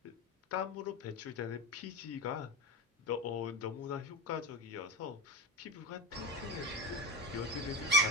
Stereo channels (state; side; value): normal; both; correlation 0.20